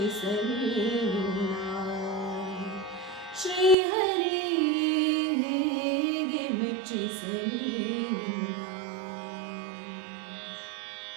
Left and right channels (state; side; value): drops out; left; at 3.8 s